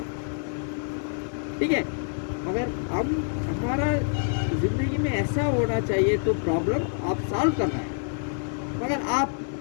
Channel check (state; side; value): silent; right; 60 dB below the other